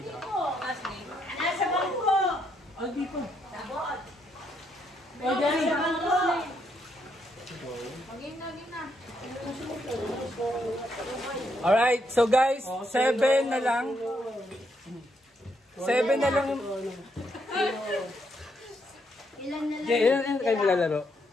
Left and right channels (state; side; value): normal; both; correlation 0.76